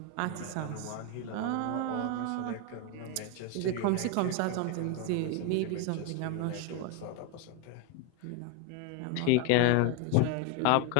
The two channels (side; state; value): both; different; correlation 0.01